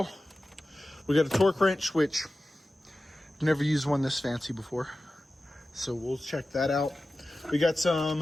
We got a torque wrench, which I've never used one this fancy before, so we'll check that out. We got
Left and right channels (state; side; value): normal; both; correlation 0.95